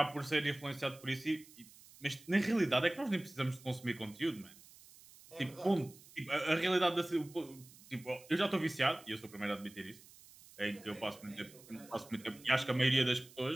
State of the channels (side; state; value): right; noise; hiss, 22 dB below the sound